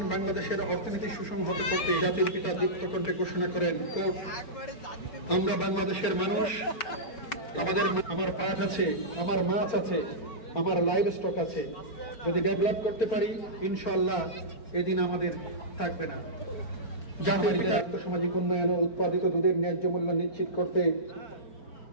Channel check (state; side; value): late; right; 4.4 ms